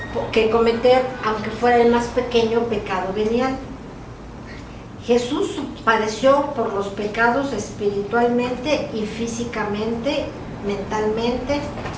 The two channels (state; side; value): identical; both; correlation 1.00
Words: que cometer, aunque fuera el más pequeño pecado venial. Jesús padeció por los pecados espiritualmente y físicamente, mentalmente